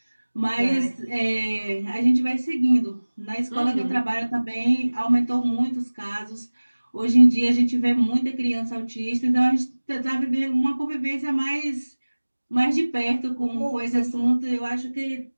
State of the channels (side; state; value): both; inverted; correlation -1.00